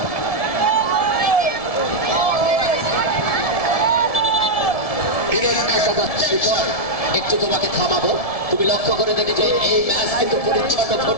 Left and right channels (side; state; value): right; late; 1.7 ms